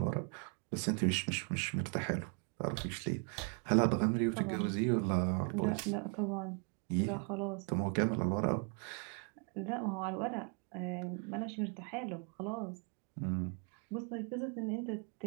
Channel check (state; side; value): quieter; left; 38.8 dB